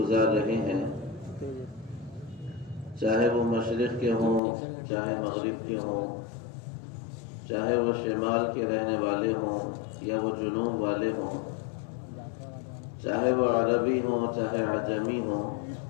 رہے ہیں، چاہے وہ مشرق کے ہوں، چاہے مغرب کے ہوں، چاہے وہ شمال کے رہنے والے ہوں یا وہ جنوب والے ہوں، چاہے وہ عربی ہوں چاہے عجمی ہوں،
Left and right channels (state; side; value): drops out; right; at 4.4 s